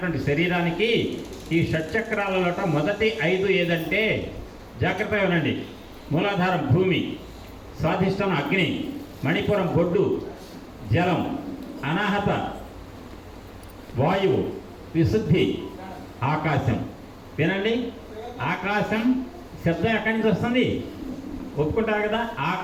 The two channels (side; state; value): both; identical; correlation 1.00